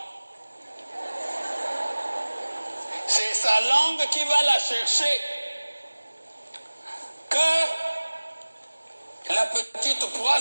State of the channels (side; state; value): both; inverted; correlation -1.00